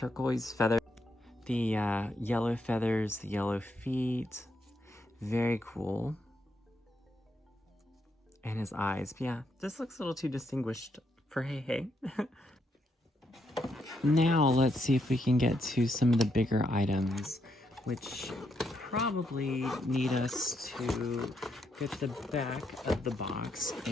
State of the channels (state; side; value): normal; both; correlation 0.78